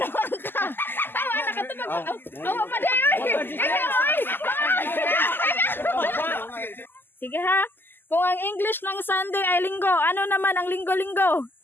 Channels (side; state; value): right; late; 0.095 ms